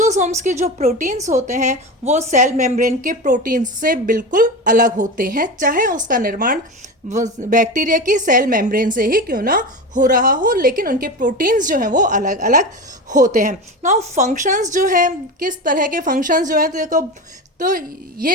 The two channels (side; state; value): both; normal; correlation 0.25